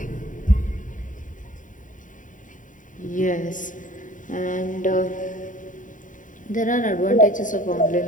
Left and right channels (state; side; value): late; right; 0.38 ms